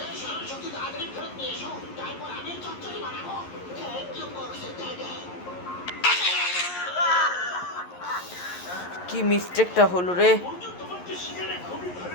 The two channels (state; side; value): late; right; 11 ms